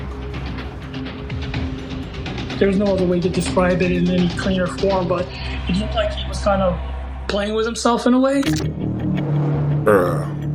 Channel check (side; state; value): both; identical; correlation 1.00